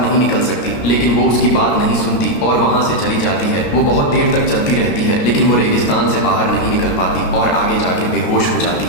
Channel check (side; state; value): right; late; 13 ms